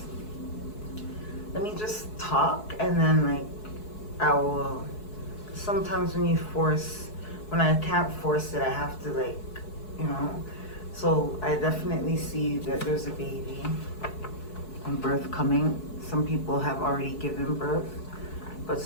Let me just talk, and then like I will. Sometimes when I can't force it, I have to like, you know. So I definitely see that there's a baby and birth coming. Some people have already given birth, but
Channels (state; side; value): late; right; 4.7 ms